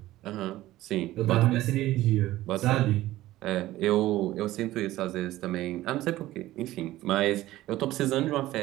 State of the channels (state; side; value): quieter; left; 15.9 dB